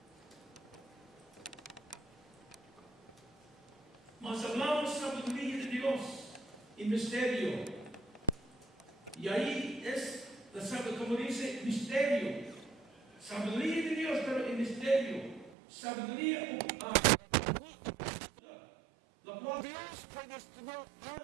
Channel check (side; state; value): left; drops out; at 15.6 s